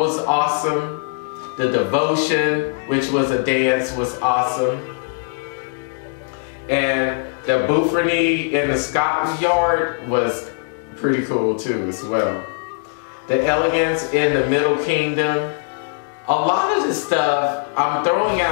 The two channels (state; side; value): silent; right; 65 dB below the other